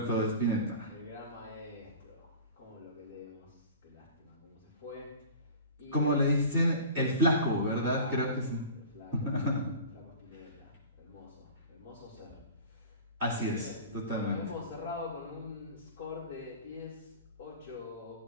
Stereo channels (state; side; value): inverted; both; correlation -0.38